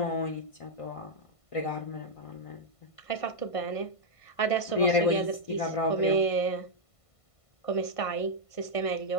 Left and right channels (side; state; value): right; late; 1.5 ms